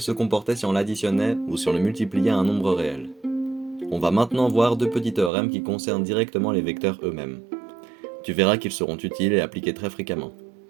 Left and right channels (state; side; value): drops out; left; at 5.3 s